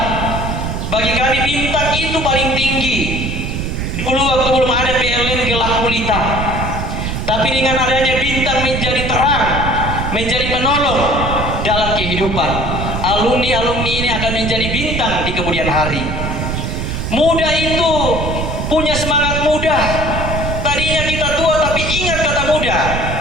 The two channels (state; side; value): noise; right; rumble, 3 dB below the sound